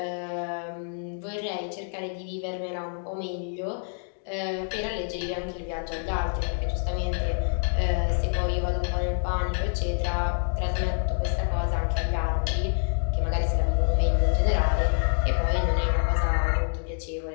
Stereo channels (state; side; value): silent; right; digital silence